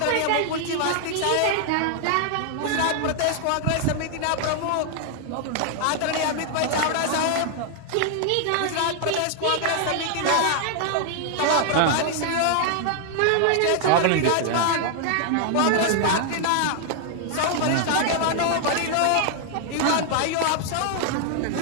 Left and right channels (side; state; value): both; different; correlation 0.00